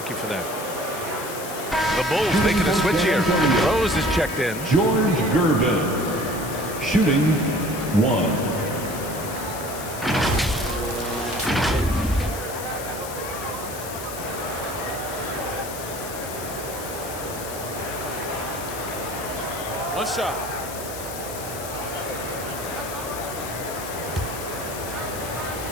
you for that. The Bulls making a switch here. Rose is checked in. George Gervin, shooting 1. One shot.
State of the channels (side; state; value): left; noise; hiss, 10 dB below the sound